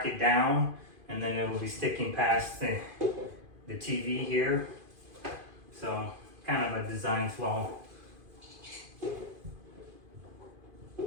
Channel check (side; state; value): left; late; 2.5 ms